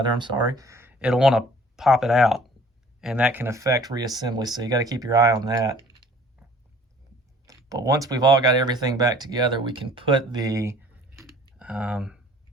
I'm sorry, it'll want to pop it out, and that can affect reassembly, so you got to keep your eye on that. But once we've all got everything back together, we can put the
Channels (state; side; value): normal; both; correlation 0.53